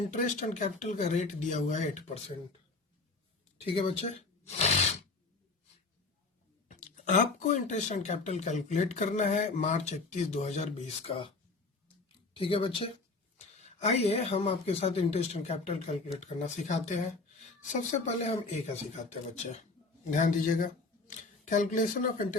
एंड कैपिटल का रेट दिया हुआ है 8%। ठीक है बच्चे, आपको इंटरेस्ट एंड कैपिटल कैलकुलेट करना है मार्च 31, 2020 का। ठीक है बच्चे, आइए हम आपके साथ इंटरेस्ट एंड कैपिटल कैलकुलेट करना सिखाते हैं। सबसे पहले हम ए का सिखाते हैं बच्चे, ध्यान दीजिएगा। Calculation of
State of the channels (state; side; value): quieter; right; 3.7 dB